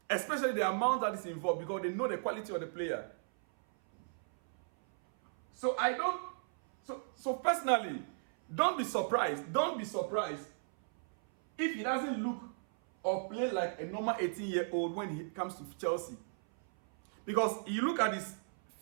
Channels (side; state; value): left; silent; 54 dB below the other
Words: Especially the amount that is involved, because they know the quality of the player. So personally, don't be surprised if he doesn't look or play like a normal 18-year-old when he comes to Chelsea. Because you look at his